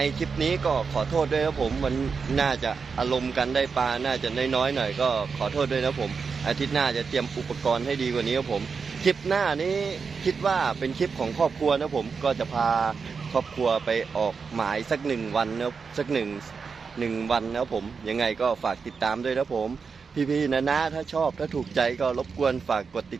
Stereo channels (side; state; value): left; quieter; 5.3 dB